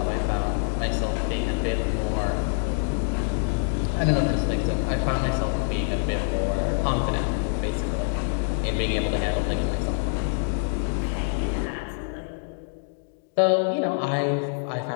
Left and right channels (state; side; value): silent; right; digital silence